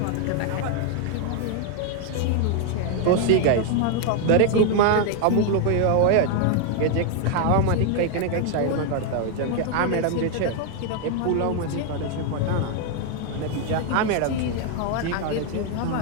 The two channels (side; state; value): both; different; correlation 0.01